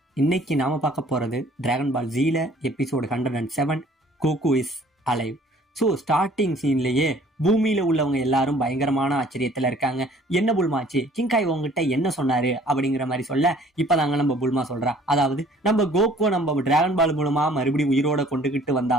இன்னைக்கு நாம பார்க்க போறது டிராகன் பால் ஜீல episode 107 Goku is alive. So starting சீன்லயே பூமியில உள்ளவங்க எல்லாரும் பயங்கரமான ஆச்சரியத்துல இருக்காங்க. என்ன புல்மாச்சு, கிங்காய் உங்ககிட்ட என்ன சொன்னாரு அப்படிங்கிற மாதிரி சொல்ல இப்பதாங்க நம்ம புல்மா சொல்றா, அதாவது நம்ம கோகோ நம்ம டிராகன் பால் மூலமா மறுபடியும் உயிரோட கொண்டுகிட்டு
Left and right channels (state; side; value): normal; both; correlation 0.55